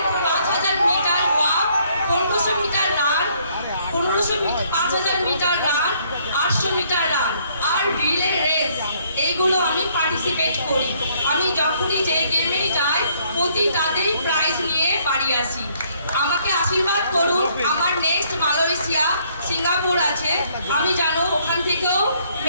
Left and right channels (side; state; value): both; inverted; correlation -0.66